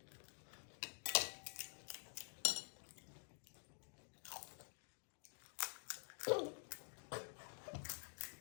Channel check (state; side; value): silent; right; digital silence